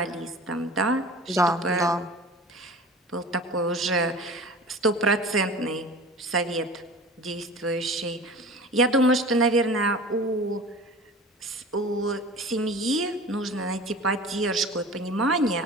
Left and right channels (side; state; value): both; normal; correlation 0.38